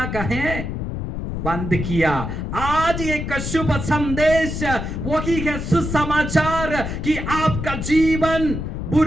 कहें बंद किया। आज एक शुभ संदेश वही है, सुसमाचार कि आपका जीवन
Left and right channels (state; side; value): noise; left; rumble, 5 dB below the sound